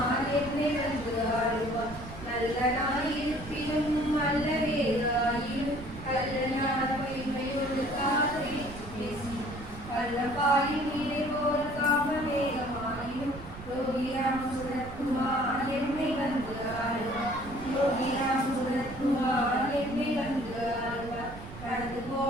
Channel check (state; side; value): noise; right; rumble, 13 dB below the sound